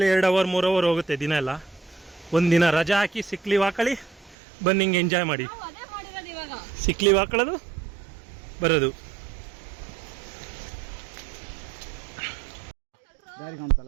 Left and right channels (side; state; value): left; drops out; at 4.4 s